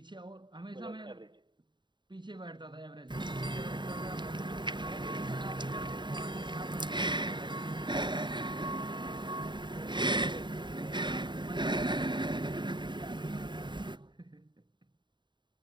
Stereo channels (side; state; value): left; late; 0.22 ms